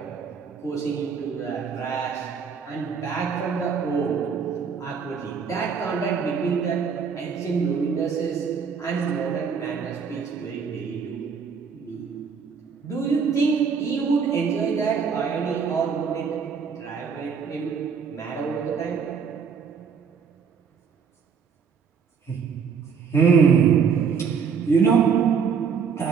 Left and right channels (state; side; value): quieter; left; 6.2 dB